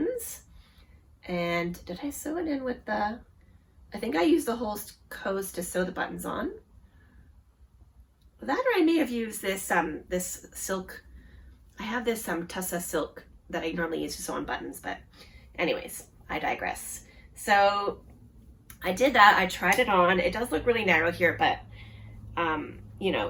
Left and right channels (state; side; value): identical; both; correlation 1.00